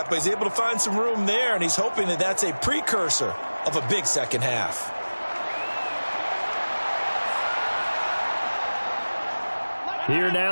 but he's able to find some room there, and he's hoping that that's a precursor of a big second half. Here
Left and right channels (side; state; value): both; inverted; correlation -1.00